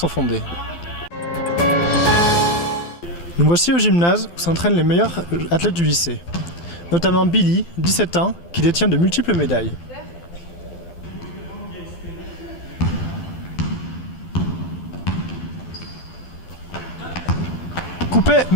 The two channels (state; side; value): late; right; 12 ms